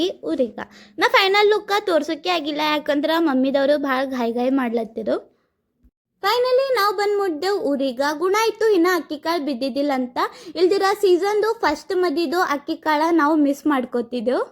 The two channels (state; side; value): identical; both; correlation 1.00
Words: ಊರಿಗೆ. ನಾ ಫೈನಲ್ ಲುಕ್ಕ ತೋರ್ಸೋಕೆ ಆಗಿಲ್ಲ, ಯಾಕಂದ್ರೆ ಮಮ್ಮಿದವರು ಭಾಳ ಗಾಯಿ ಮಾಡ್ಲತ್ತಿರು. ಫೈನಲಿ ನಾವು ಬಂದು ಮುಟ್ಟಿದೆವು ಊರಿಗೆ. ಗುಣ ಆಯಿತು ಇನ್ನು ಅಕ್ಕಿ ಕಾಳು ಬಿದ್ದಿದ್ದಿಲ್ಲ ಅಂತ. ಇಲ್ದಿರ ಸೀಸನ್ದು ಫಸ್ಟ್ ಮದಿದು ಅಕ್ಕಿ ಕಾಳು ನಾವು ಮಿಸ್ ಮಾಡ್ಕೋತಿದ್ದೆವು.